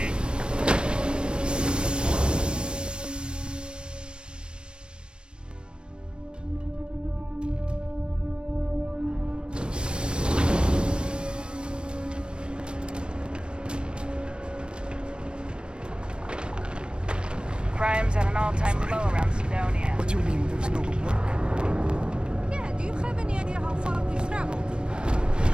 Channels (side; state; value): left; late; 0.055 ms